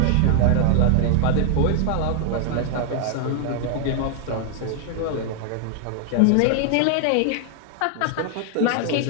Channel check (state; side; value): different; both; correlation 0.00